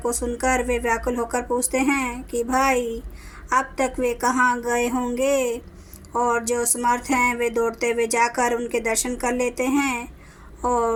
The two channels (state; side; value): identical; both; correlation 1.00